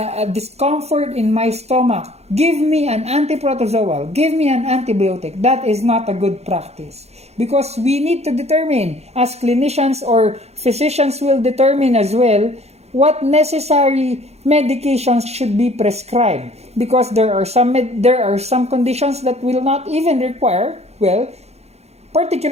discomfort in my stomach. Give me an antiprotozoal. Give me an antibiotic. That is not a good practice. Because we need to determine, as clinicians or physicians will determine as well, what necessary medications should be prescribed, because there are some conditions that will not even require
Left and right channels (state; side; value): late; left; 0.31 ms